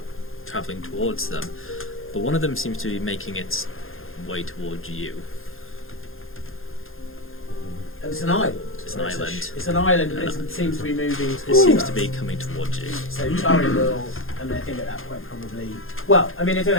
travelling towards them, but one of them seems to be making its way towards you. And it's an island? It's it's an island. It's an island, and it seems to be moving It towards seems us. to be coming towards you. So Torin will, and I think at that point probably. Well, I mean, I don't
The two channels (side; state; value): right; late; 0.60 ms